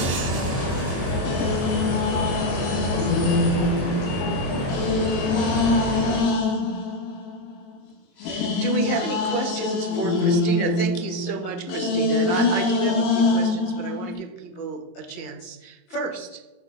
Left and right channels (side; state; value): right; late; 23 ms